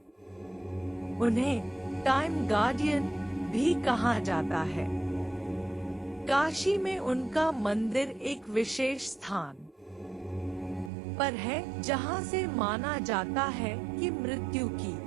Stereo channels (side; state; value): left; drops out; at 10.9 s